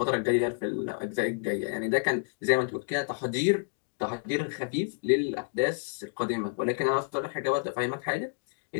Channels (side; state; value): right; silent; digital silence